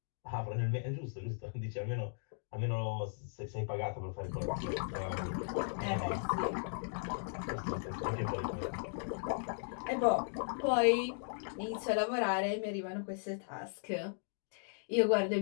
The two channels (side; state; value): right; silent; digital silence